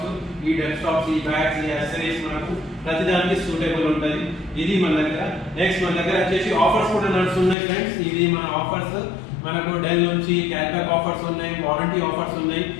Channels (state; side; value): drops out; right; at 7.6 s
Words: ఈ డెస్క్టాప్స్, ఈ బ్యాగ్స్, ఈ యాక్సెసరీస్ మనకు ప్రతిదానికి సూటబుల్ ఉంటుంది. ఇది మన దగ్గర. నెక్స్ట్ మన దగ్గర వచ్చేసి ఆఫర్స్ కూడా నడుస్తున్నాయి ఫ్రెండ్స్. ఇది మన ఆఫర్స్. మనకు డెల్ నుంచి క్యాష్ బ్యాక్ ఆఫర్స్ ఉన్నాయి, వారంటీ ఆఫర్స్ ఉన్నాయి.